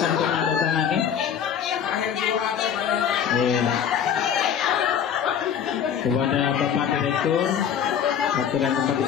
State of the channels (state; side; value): quieter; right; 8.3 dB